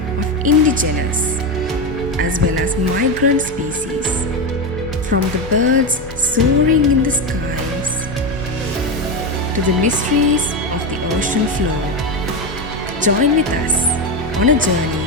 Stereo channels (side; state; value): both; normal; correlation 0.14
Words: of indigenous as well as migrant species, from the birds soaring in the skies to the mysteries of the ocean floor. Join with us on a